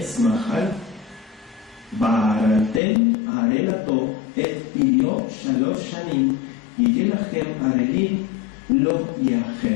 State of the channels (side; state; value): right; drops out; at 2.8 s